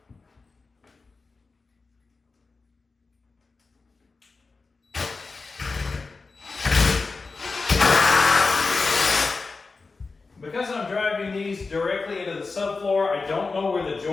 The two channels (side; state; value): right; quieter; 4.1 dB